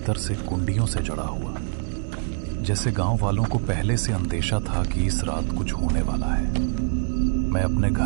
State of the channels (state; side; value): silent; left; digital silence